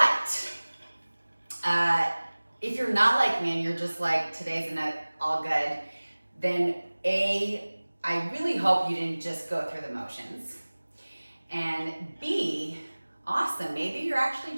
if you're not like me and you're just like, today's not all good, then I really hope you didn't just go through the motions. And B, awesome, maybe you're actually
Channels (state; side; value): inverted; both; correlation -1.00